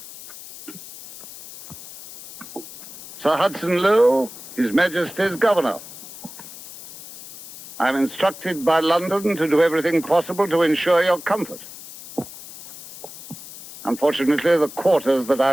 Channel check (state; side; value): noise; left; hiss, 15 dB below the sound